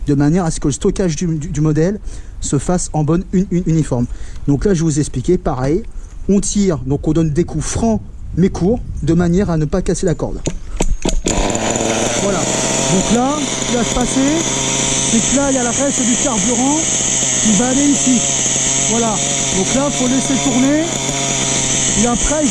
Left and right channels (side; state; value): both; identical; correlation 1.00